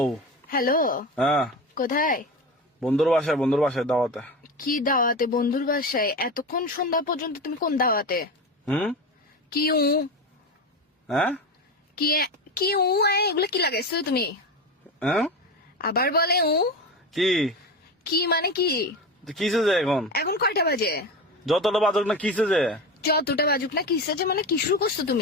হ্যালো, হ্যাঁ, কোথায়? বন্ধুর বাসায় দাওয়াতে। কি দাওয়াতে? বন্ধুর বাসায়? এতক্ষণ সন্ধ্যা পর্যন্ত তুমি কোন দাওয়াতে? হুম। কি উ হ্যাঁ কি কি উ এগুলো কি লাগাইছো তুমি? হ্যাঁ আবার বলে উ কি কি মানে কি? কিসে যে এখন এখন কয়টা বাজে? যতটা বাজক না কিসে যে যতটা বাজুক না কিসে যে মানে কি শুরু করছো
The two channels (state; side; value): normal; both; correlation 0.23